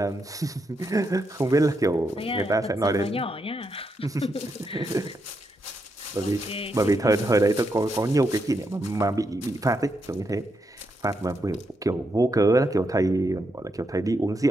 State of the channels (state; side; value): normal; both; correlation 0.82